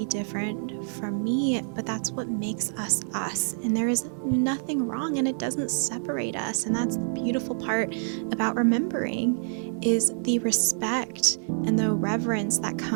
different from me, but that's what makes us us. And there is nothing wrong, and it doesn't separate us. And that's the beautiful part about remembering, is the respect and the reverence that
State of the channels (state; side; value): silent; left; 60 dB below the other